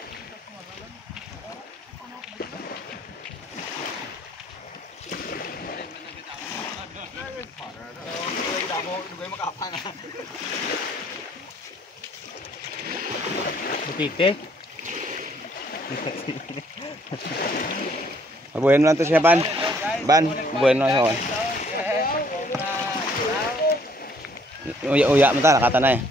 Butite. Bueno lang to siya ban. Bueno siya. Uya mo ta nakata na eh.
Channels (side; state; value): both; normal; correlation 0.63